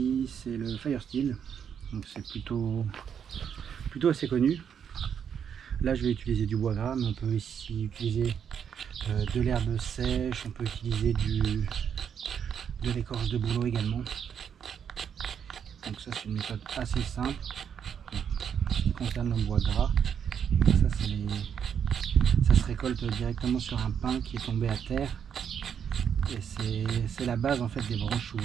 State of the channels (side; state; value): left; quieter; 7.9 dB